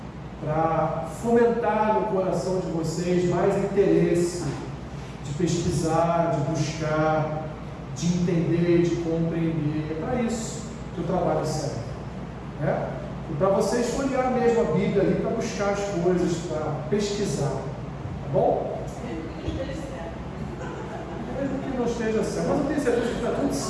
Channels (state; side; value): identical; both; correlation 1.00